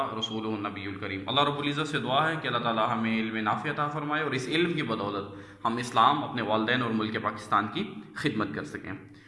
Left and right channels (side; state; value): both; identical; correlation 1.00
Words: रसूलुहुन नबियुल करीम। अल्लाह रब्बुल इज़्ज़त से दुआ है कि अल्लाह ताला हमें इल्म नाफ़ि अता फ़रमाए और इस इल्म की बदौलत हम इस्लाम, अपने वालिदैन और मुल्क पाकिस्तान की खिदमत कर सकें।